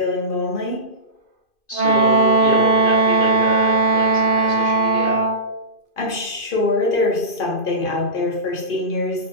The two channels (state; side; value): late; right; 2.5 ms